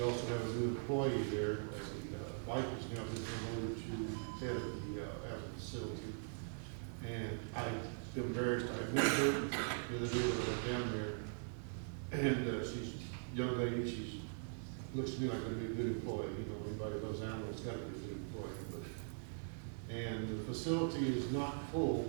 also have a new employee there, as the wife has now been promoted to head of the animal facility. And I'm embarrassed, I met her the other day when I went down there. And she's a young lady, she looks to me like going to be a good employee. You know, anybody that loves animals got to be a good employee. And the facility is not full,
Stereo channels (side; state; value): left; silent; digital silence